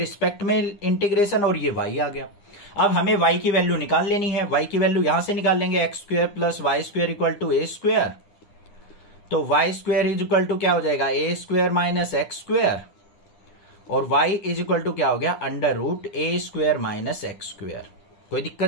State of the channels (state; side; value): late; right; 9.9 ms